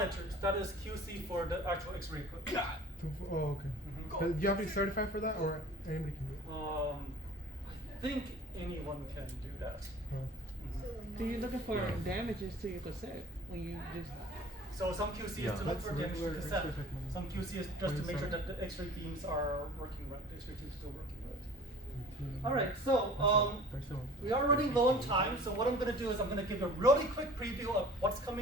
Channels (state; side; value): normal; both; correlation 0.45